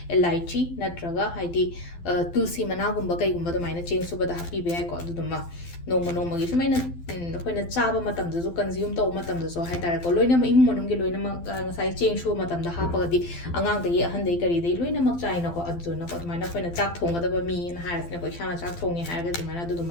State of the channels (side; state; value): right; late; 12 ms